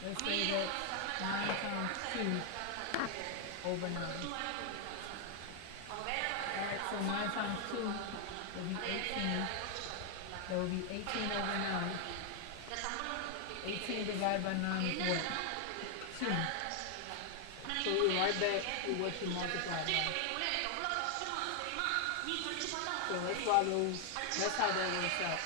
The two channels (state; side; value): different; both; correlation 0.00